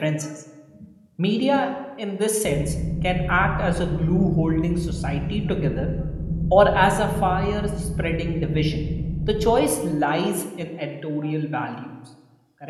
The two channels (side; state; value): both; identical; correlation 1.00